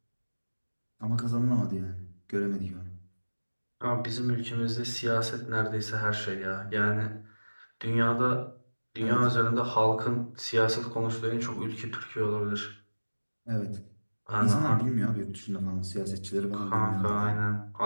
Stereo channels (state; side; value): inverted; both; correlation -1.00